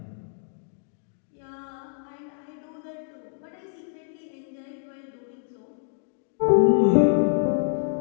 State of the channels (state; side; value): silent; right; digital silence